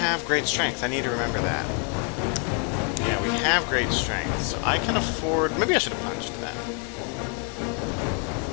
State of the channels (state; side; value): quieter; right; 38.6 dB